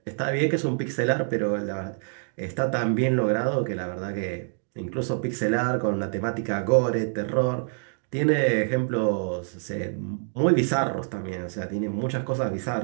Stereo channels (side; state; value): left; silent; 61 dB below the other